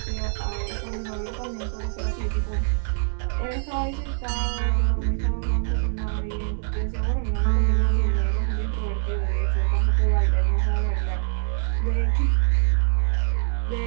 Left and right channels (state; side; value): silent; left; digital silence